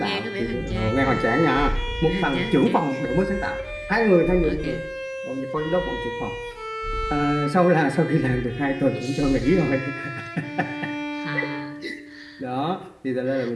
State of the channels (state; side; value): identical; both; correlation 1.00